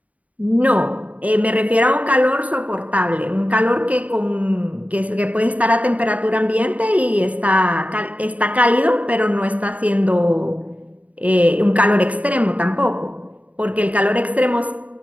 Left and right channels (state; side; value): late; left; 0.070 ms